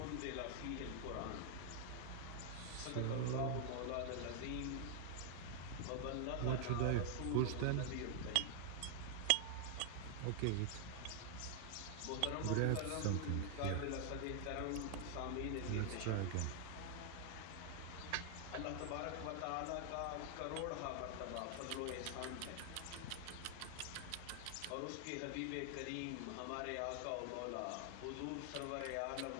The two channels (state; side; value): different; both; correlation 0.00